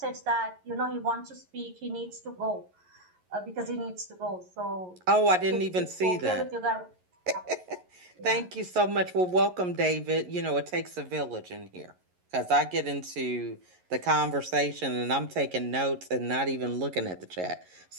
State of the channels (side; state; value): left; late; 11 ms